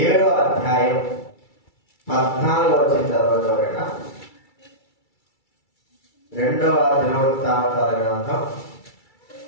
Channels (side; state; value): right; late; 2.3 ms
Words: అధ్యాయం 14వ వచనం చదవగలరా? 2వ దినవృత్తాంతాల గ్రంథం